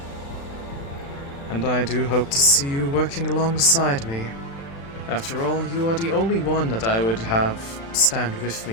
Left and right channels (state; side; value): late; right; 36 ms